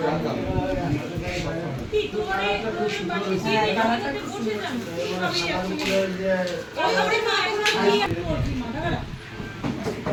কি করে তুমি বাকি দিয়ে দিতে বসে যান ওই ওরে মা এখন কি করছি মাথা খারাপ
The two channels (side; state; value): both; identical; correlation 1.00